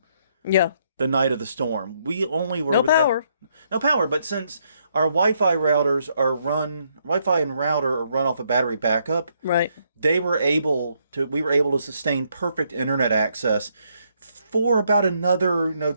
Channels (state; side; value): inverted; both; correlation -0.73